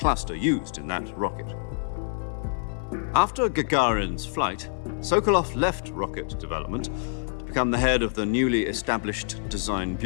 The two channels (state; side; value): silent; right; 60 dB below the other